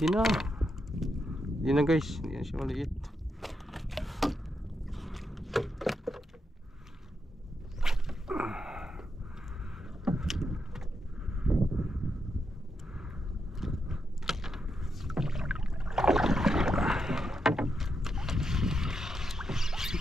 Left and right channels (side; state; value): both; normal; correlation 0.83